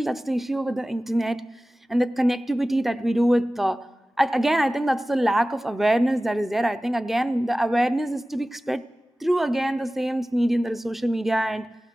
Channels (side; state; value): both; normal; correlation 0.97